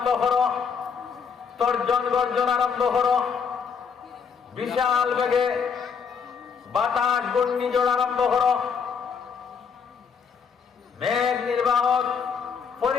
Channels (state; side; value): quieter; right; 6.2 dB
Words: করো, তর্জন গর্জন আরম্ভ করো, বিশাল বেগে বাতাস ঘূর্ণিঝড় আরম্ভ করো। মেঘ নির্বাহক